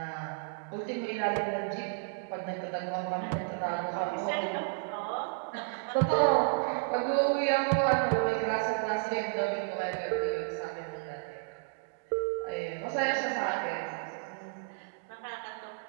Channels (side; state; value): left; silent; digital silence